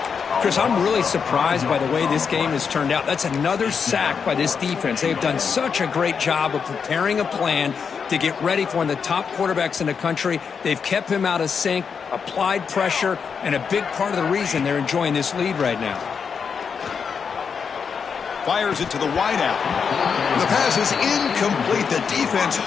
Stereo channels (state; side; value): quieter; right; 6.2 dB